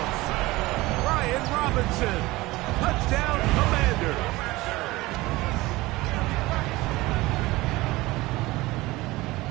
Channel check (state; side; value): quieter; left; 20.0 dB